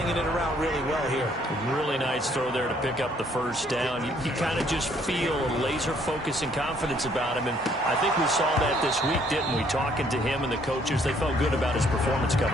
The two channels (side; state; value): both; normal; correlation 0.65